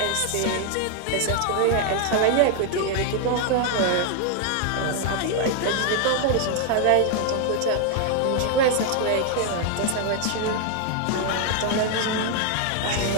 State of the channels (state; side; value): different; both; correlation 0.00